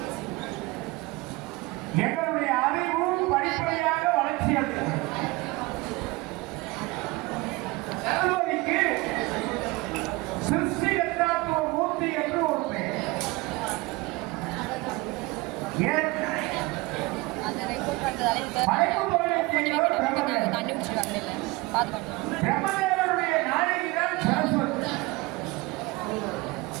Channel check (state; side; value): quieter; left; 22.7 dB